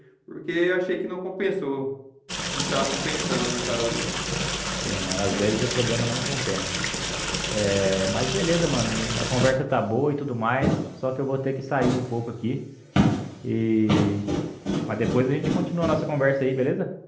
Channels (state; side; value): identical; both; correlation 1.00